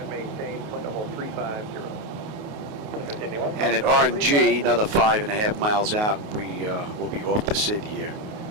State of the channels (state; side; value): late; left; 28 ms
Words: maintain flight level 350. And at RNG, another 5.5 miles out, we will be off the SID here